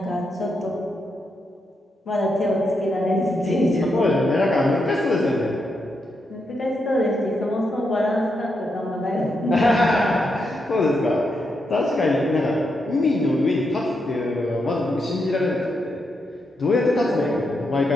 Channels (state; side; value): normal; both; correlation 0.83